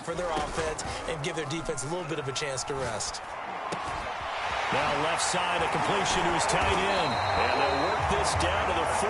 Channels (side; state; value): both; identical; correlation 1.00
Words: for their offense and give their defense a little bit of a chance to rest. Now left side, a completion to his tight end. And they'll work this down to the